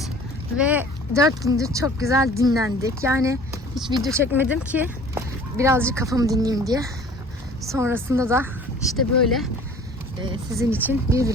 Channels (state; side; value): normal; both; correlation 0.48